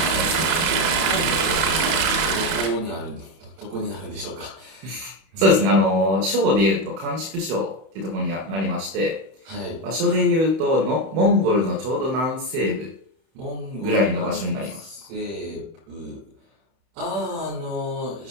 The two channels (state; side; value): late; left; 31 ms